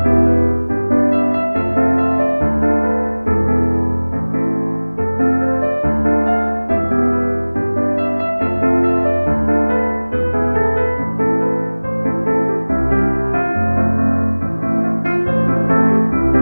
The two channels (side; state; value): both; inverted; correlation -1.00